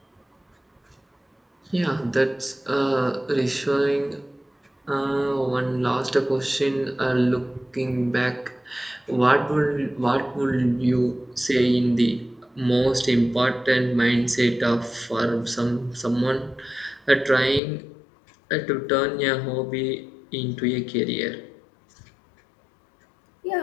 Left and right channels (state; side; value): drops out; right; at 17.6 s